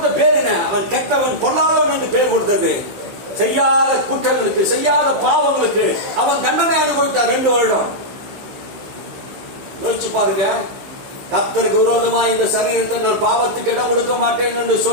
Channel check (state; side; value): late; left; 16 ms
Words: பேர் என்ன? அவன் கெட்டவன், கொல்லாதவன் என்று பேர் கொடுத்தது. செய்யாத குற்றங்களுக்கு, செய்யாத பாவங்களுக்கு அவன் தண்டனை அனுபவித்தார் 2 வருடம். யோசிச்சு பாருங்க. கர்த்தருக்கு விரோதமா இந்த சரீரத்தை நான் பாவத்துக்கு இடம் கொடுக்க மாட்டேன் என்று